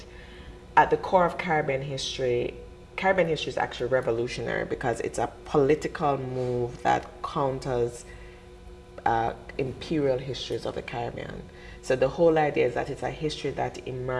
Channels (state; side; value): identical; both; correlation 1.00